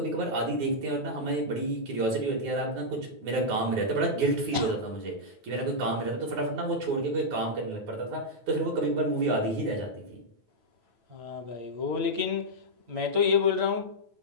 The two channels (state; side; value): late; left; 8.9 ms